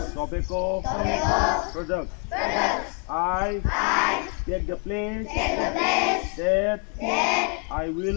tobacco products. I take the place that I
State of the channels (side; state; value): right; quieter; 37.1 dB